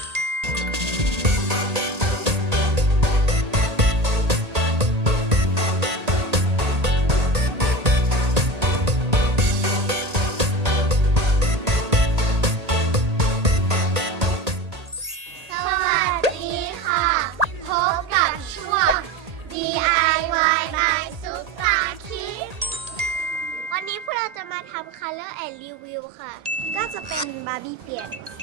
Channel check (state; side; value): late; left; 1.8 ms